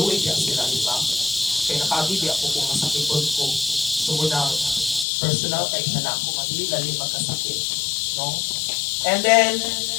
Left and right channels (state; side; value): drops out; right; at 5.1 s